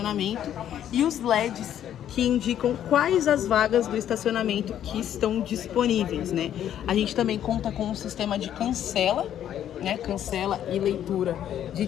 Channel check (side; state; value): right; quieter; 10.6 dB